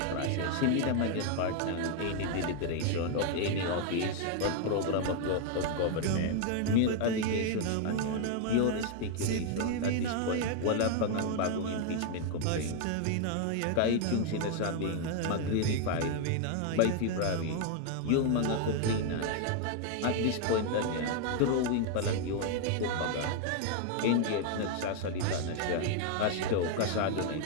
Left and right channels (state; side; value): different; both; correlation 0.00